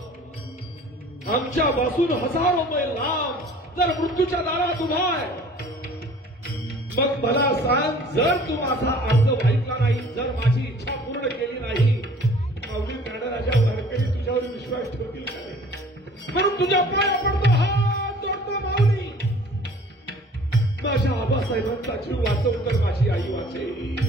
आमच्यापासून हजारो मैल लांब जर मृत्यूच्या दारात उभा आहे. मग मला सांग, जर तू माझा अर्ज ऐकला नाही, जर माझी इच्छा पूर्ण केली नाही, माऊली ज्ञानराजा वारकरी तुझ्यावर विश्वास ठेवतील का नाही? म्हणून तुझ्या पाया पडतो, हात जोडतो माऊली. माझ्या आबासाहेबांचा जीव वाचव तर माझी आई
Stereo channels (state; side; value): normal; both; correlation 0.50